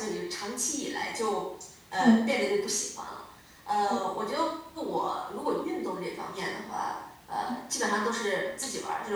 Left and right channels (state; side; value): identical; both; correlation 1.00